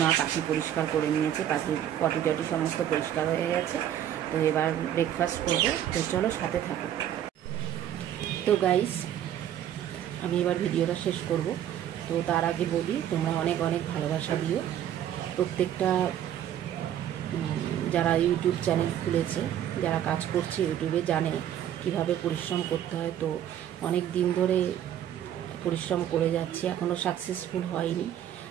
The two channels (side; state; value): left; quieter; 10.7 dB